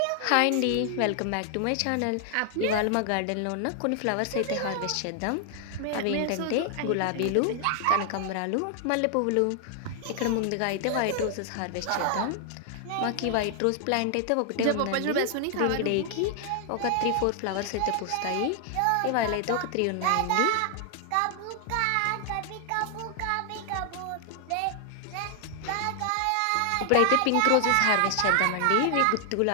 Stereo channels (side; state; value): both; different; correlation 0.00